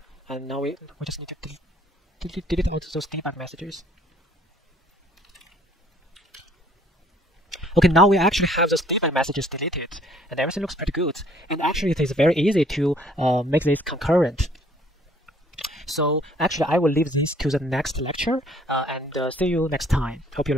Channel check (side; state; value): both; normal; correlation 0.59